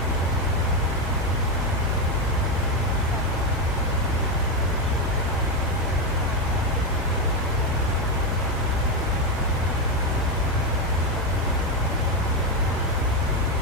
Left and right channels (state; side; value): normal; both; correlation 0.08